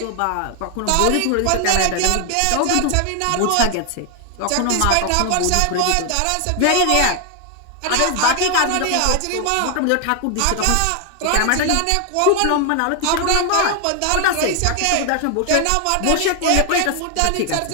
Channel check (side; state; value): both; different; correlation 0.00